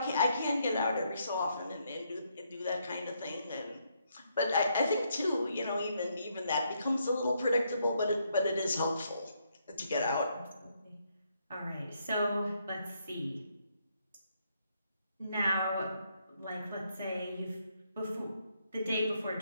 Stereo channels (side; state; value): both; inverted; correlation -0.75